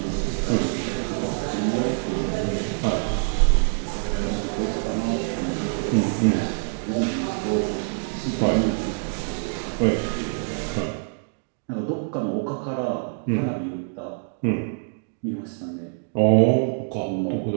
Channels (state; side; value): silent; left; digital silence